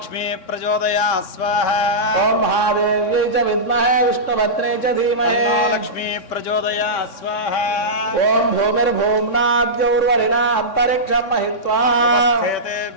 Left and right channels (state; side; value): late; right; 3.6 ms